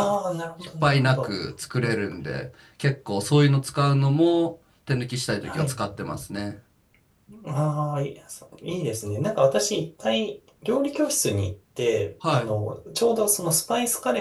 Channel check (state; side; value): identical; both; correlation 1.00